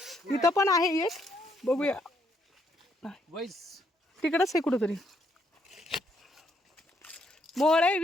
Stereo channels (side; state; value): both; normal; correlation 0.73